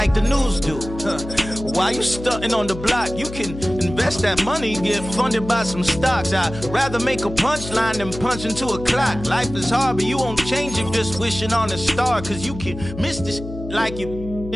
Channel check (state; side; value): noise; left; hum, 11 dB below the sound